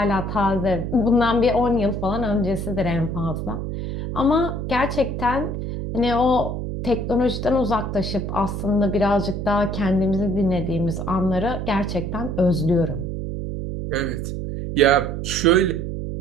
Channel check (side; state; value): right; noise; hum, 4 dB below the sound